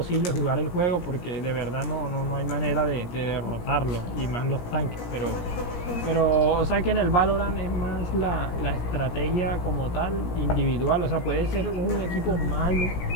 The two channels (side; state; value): right; late; 17 ms